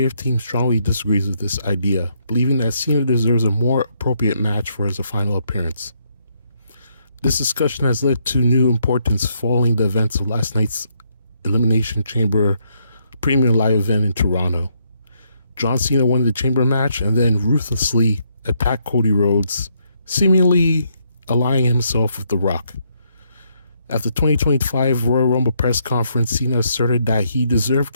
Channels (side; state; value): both; inverted; correlation -0.75